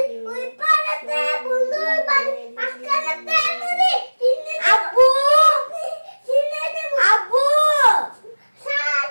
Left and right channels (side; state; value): both; inverted; correlation -1.00